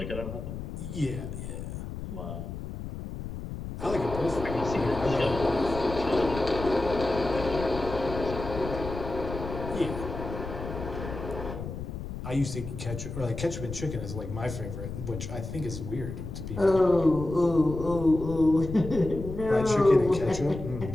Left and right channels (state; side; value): noise; left; rumble, 8 dB below the sound